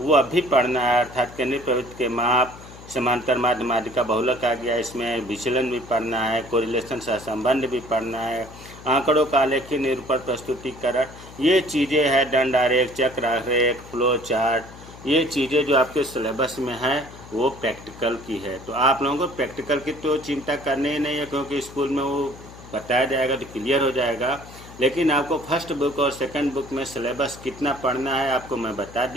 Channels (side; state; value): left; noise; hum, 17 dB below the sound